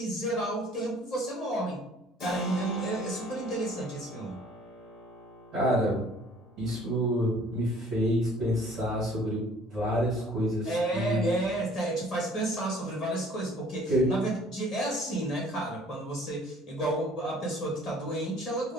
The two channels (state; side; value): normal; both; correlation 0.55